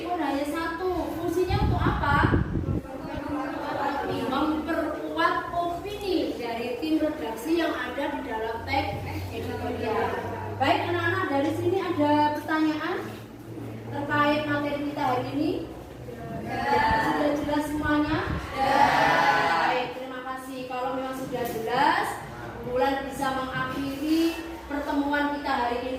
hanya satu. Fungsinya untuk apa? Memperkuat opini dari tim redaksi yang ada di dalam teks editorial. Baik anak-anak, dari sini ada pertanyaan terkait materi kita hari ini? Sudah jelas semuanya? Baik, terima kasih. Kalau memang sudah jelas, Bulan bisa mengakhiri pertemuan kita hari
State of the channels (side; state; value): both; identical; correlation 1.00